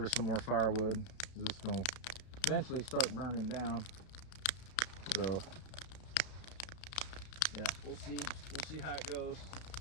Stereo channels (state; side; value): late; right; 32 ms